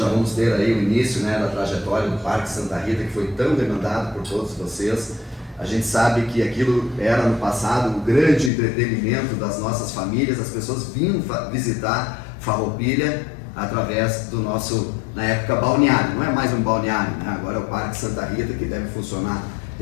vamos ter aí o início, né, da trajetória do Parque Santa Rita, que foi tão demandado por todos vocês. A gente sabe que aquilo era no passado o grande entretenimento das nossas famílias, as pessoas vinham visitar Farroupilha através do nosso, na época, balneário. Não é mais um balneário, né? Agora é o Parque Santa Rita, que deve funcionar.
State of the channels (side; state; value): right; drops out; at 8.5 s